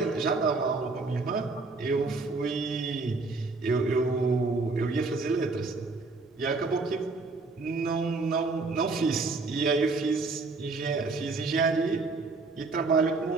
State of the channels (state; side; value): quieter; left; 3.8 dB